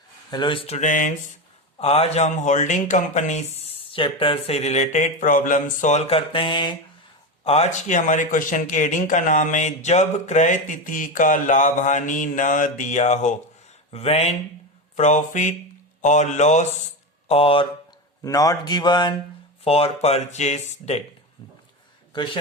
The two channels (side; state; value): both; normal; correlation 0.18